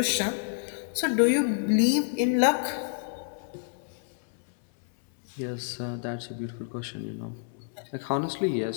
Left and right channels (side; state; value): right; silent; 59 dB below the other